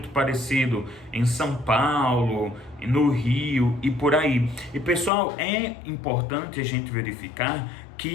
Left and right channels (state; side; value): drops out; right; at 5.1 s